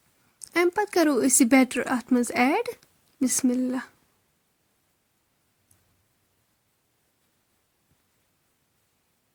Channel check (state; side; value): identical; both; correlation 1.00